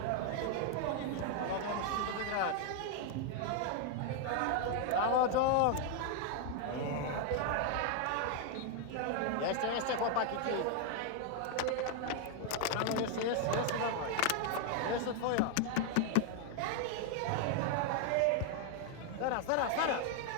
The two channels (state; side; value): different; both; correlation 0.00